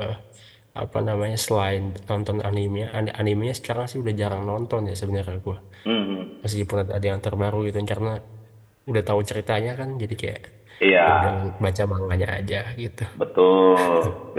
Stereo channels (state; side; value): identical; both; correlation 1.00